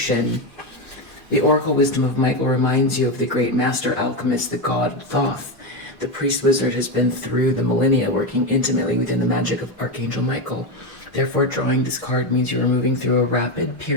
The oracle wisdom of Michael reminds you of the great master alchemist, the god Thoth. The priest wizard has been through the millennia working intimately within the magic of Archangel Michael. Therefore, drawing this card means you are moving through a rapid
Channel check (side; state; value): both; normal; correlation 0.12